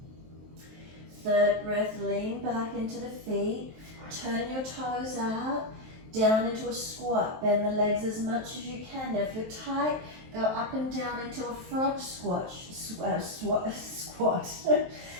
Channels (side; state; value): left; late; 23 ms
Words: Third breath, lean back into the feet. Turn your toes out, down into a squat. Bend the legs as much as you can. Now if you're tight, go up and down into a frog squat.